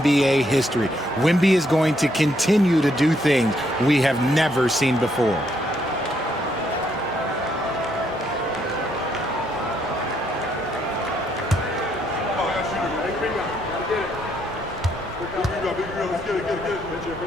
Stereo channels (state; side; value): normal; both; correlation 0.73